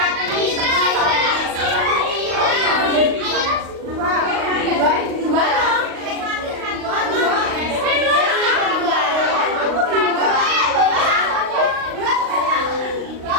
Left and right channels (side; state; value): left; late; 38 ms